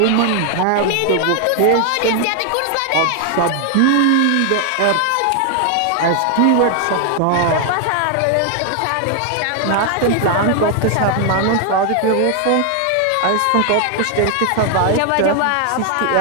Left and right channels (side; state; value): both; different; correlation 0.00